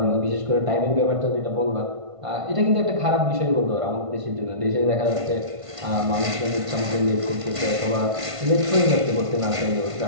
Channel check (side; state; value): left; late; 1.5 ms